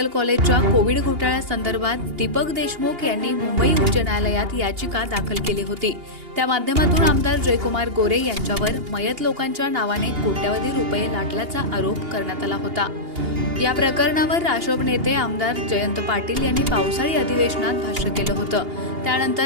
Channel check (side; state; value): left; late; 2.8 ms